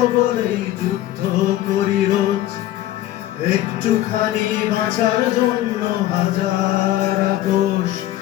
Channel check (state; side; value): quieter; right; 14.3 dB